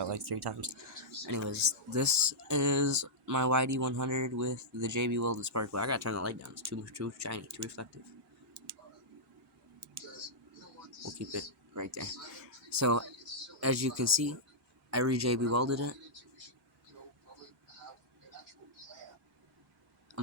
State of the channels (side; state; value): both; normal; correlation -0.10